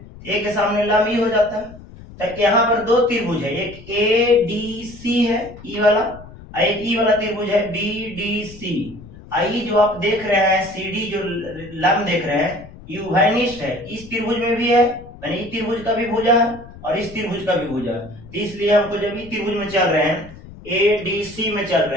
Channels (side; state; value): left; noise; rumble, 18 dB below the sound